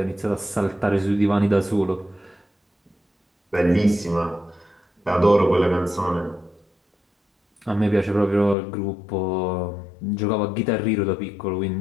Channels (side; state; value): right; drops out; at 8.6 s